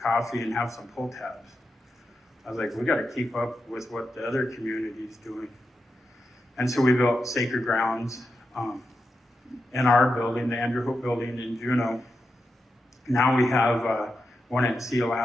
coffee and have some pull tabs. I was like, we got to keep up with what the other community's doing. And so we built Sacred Grounds in our building, the Andrew Hope building in Juneau. Now we have one at Sea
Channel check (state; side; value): normal; both; correlation 0.87